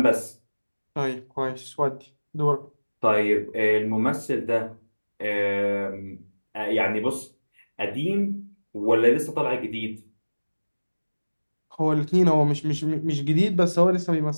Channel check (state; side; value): inverted; both; correlation -1.00